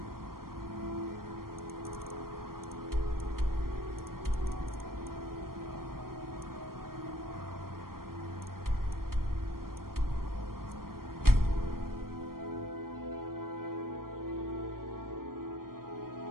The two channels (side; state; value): left; late; 0.92 ms